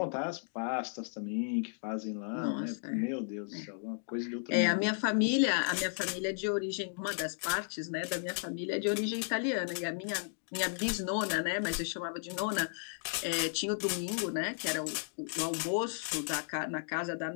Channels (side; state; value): right; silent; digital silence